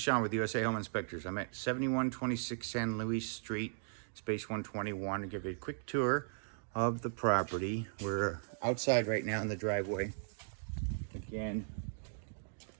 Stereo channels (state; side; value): silent; left; digital silence